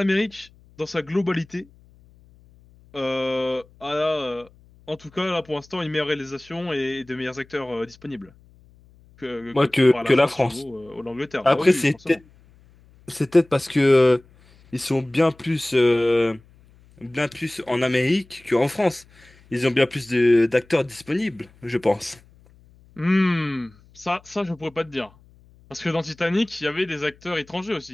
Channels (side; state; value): left; noise; hum, 28 dB below the sound